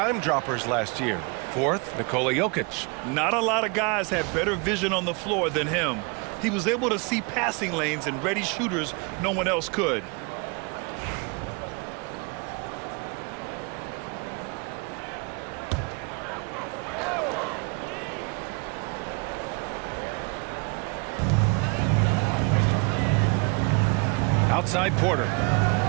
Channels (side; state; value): left; quieter; 31.5 dB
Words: droppers last year. Fourth, Nikola Jokic. Not a lot of guys had better vision on the floor than him. He was able to see passing lanes and ready shooters no one else could. Outside Porter.